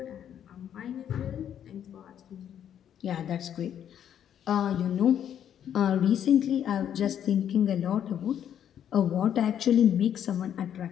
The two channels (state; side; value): quieter; right; 9.6 dB